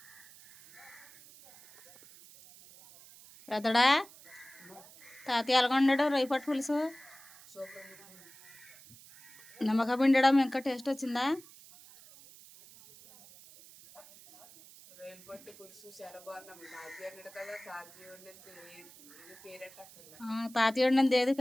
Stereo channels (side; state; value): right; noise; hiss, 21 dB below the sound